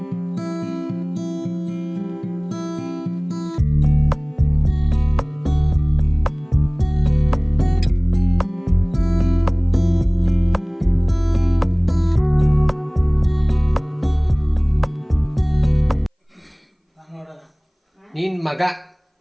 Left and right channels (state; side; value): identical; both; correlation 1.00